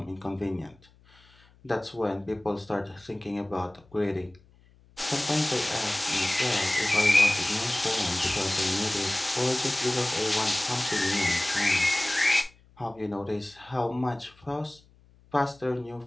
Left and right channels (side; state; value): left; noise; hum, 29 dB below the sound